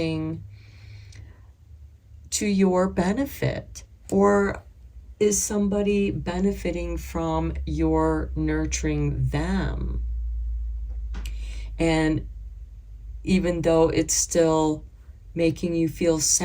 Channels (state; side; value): identical; both; correlation 1.00